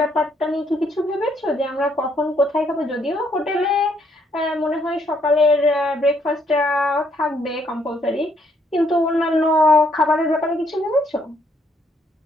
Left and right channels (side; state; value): both; normal; correlation 0.70